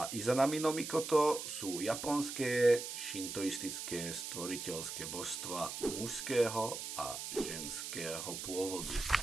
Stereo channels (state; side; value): noise; right; hiss, 6 dB below the sound